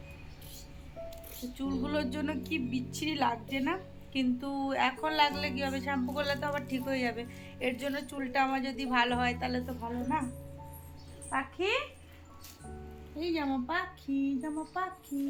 চুলগুলোর জন্য কি বিচ্ছিরি লাগছে না, কিন্তু এখন লাগলে কি হবে, শ্যাম্পু করলে তো আবার ঠিক হয়ে যাবে। এর জন্য চুলটা আমার যদি ভালো হয় তাহলে তো ভালো না। পাখি, এই জামা পাখি, জামা পাখি,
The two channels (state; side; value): identical; both; correlation 1.00